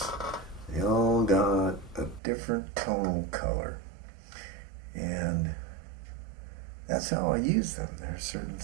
They all got a different tonal color, and that's how I use them. There are certain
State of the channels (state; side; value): drops out; left; at 2.2 s